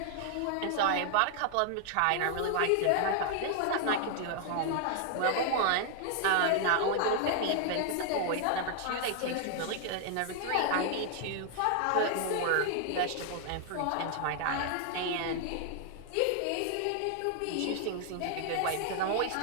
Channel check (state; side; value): different; both; correlation 0.00